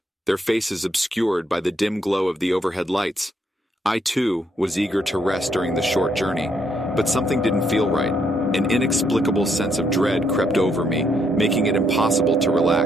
their faces obscured by the dim glow of the overhead lights. I, too, was eager to rest during the short journey, but something didn't feel right. An inexplicable sense of dread crept over me, making it impossible to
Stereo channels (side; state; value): both; normal; correlation 0.74